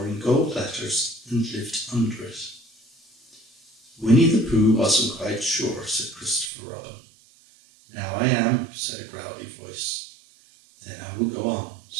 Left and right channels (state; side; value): drops out; left; at 6.5 s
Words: in gold letters and lived under it. Winnie the Pooh wasn't quite sure, said Christopher Robin. Now I am, said a growly voice. Then I will go on,